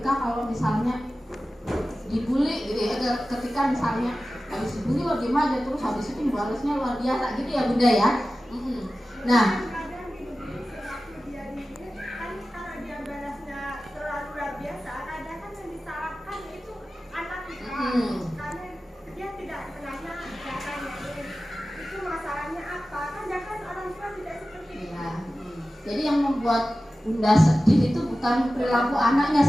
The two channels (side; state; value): both; normal; correlation 0.95